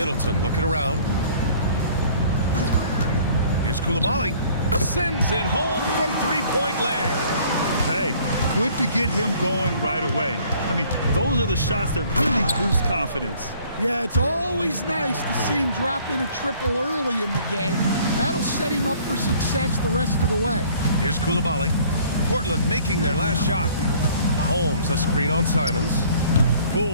looking around. Here's Coulibaly. Sends it home from three-point land. Hey, good to get him going right away. I mean, those are the shots that really boost confidence. Yeah, it's always nice to see him drop in a triple early in the game. That'll set him up for success the rest of the way. Here's Coulibaly. Portland making their last shot. Holmes, a screen on Simons.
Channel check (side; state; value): both; inverted; correlation -0.55